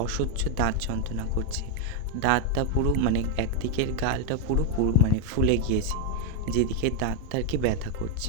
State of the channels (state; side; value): different; both; correlation 0.01